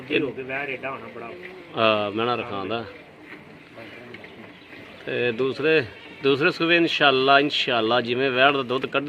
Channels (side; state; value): both; identical; correlation 1.00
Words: ਹੋ ਕੇ ਵੈਰ ਏਡਾ ਹੋਣਾ ਬੜਾ। ਮੈਣਾ ਰਖਾਂਦਾ ਤੇ ਦੂਸਰੇ ਸੂਬੇ ਇਨਸ਼ਾਅੱਲਾ ਜਿਵੇਂ ਵੈੜ ਦਾ ਦੁੱਧ